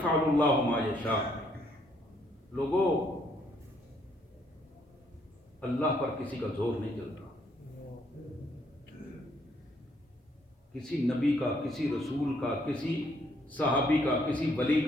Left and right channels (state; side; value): normal; both; correlation 0.69